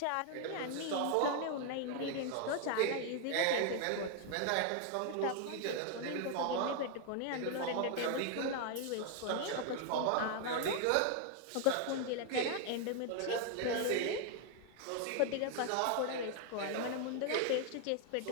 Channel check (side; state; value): both; different; correlation 0.00